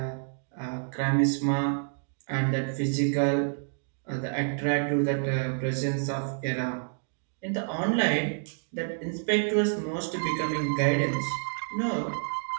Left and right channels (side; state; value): left; silent; digital silence